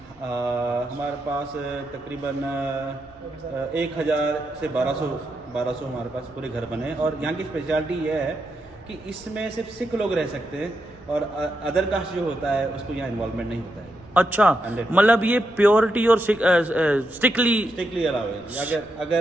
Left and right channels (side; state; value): right; noise; rumble, 28 dB below the sound